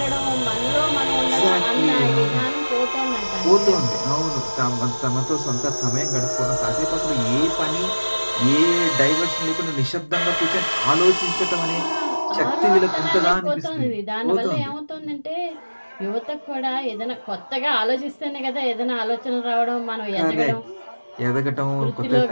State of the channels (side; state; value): both; inverted; correlation -1.00